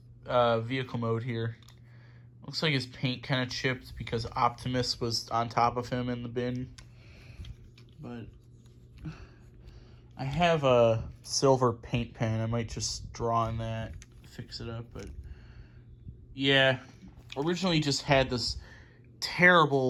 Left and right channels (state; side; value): identical; both; correlation 1.00